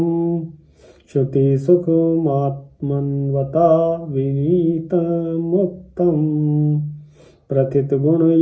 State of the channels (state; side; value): identical; both; correlation 1.00